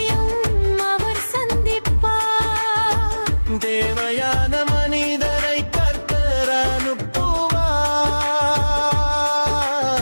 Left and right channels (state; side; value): inverted; both; correlation -1.00